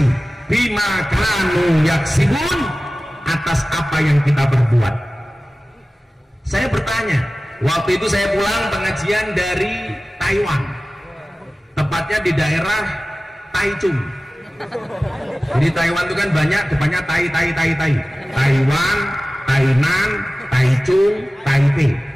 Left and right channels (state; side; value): normal; both; correlation 0.96